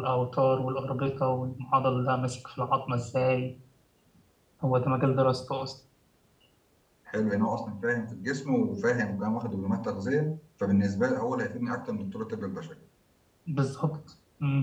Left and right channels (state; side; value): identical; both; correlation 1.00